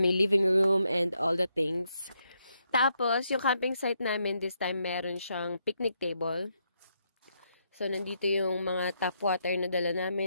living room and all the things. Tapos, yung camping site namin, this time, meron siyang picnic table. So, nandito yung mga tap water na dala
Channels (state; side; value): inverted; both; correlation -0.78